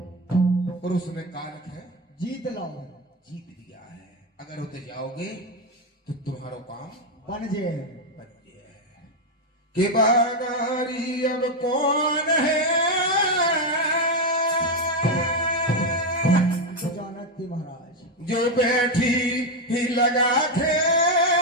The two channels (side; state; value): both; normal; correlation 0.07